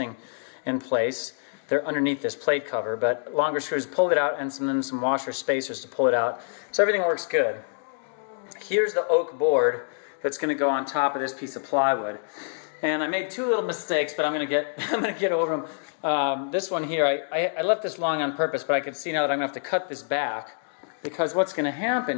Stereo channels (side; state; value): right; silent; digital silence